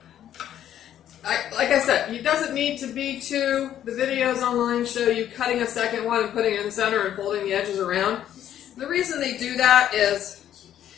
Like I said, it doesn't need to be two. The videos online show you cutting a second one and putting it in the center and folding the edges around. The reason they do that is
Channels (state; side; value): quieter; right; 10.9 dB